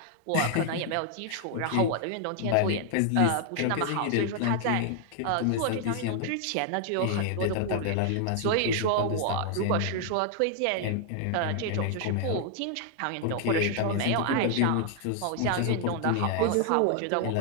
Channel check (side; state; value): both; different; correlation 0.00